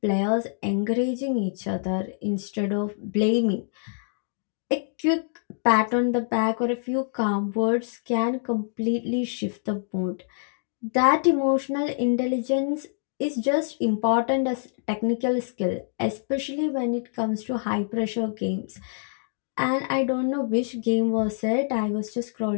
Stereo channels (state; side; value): silent; right; digital silence